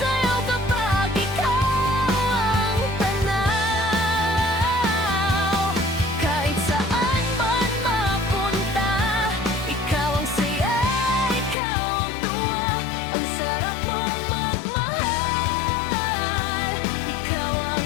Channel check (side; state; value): right; drops out; at 11.6 s